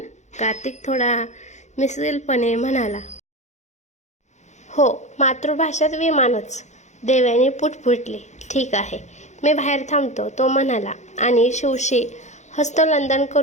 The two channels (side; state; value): right; late; 0.34 ms